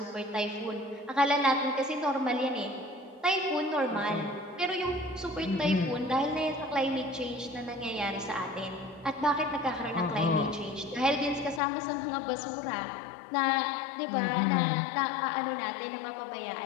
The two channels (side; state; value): right; drops out; at 11.6 s